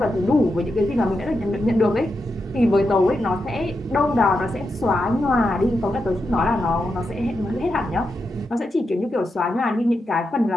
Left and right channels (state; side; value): normal; both; correlation 0.86